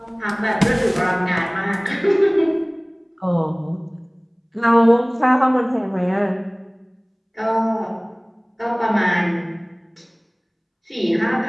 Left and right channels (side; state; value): both; identical; correlation 1.00